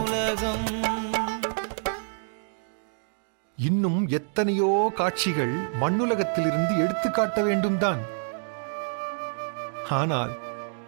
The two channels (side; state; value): left; silent; digital silence